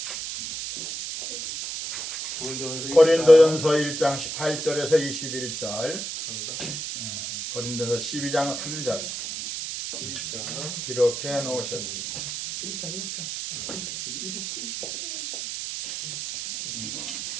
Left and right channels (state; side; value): noise; right; hiss, 5 dB below the sound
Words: 고린도전서 1장 18절에서 21절, 고린도전서 12장 3절 기록해 놓으셨습니다.